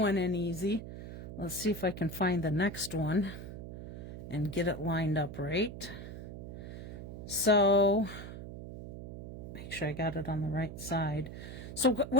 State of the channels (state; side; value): noise; right; hum, 10 dB below the sound